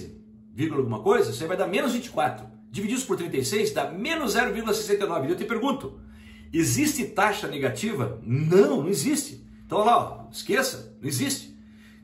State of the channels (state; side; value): identical; both; correlation 1.00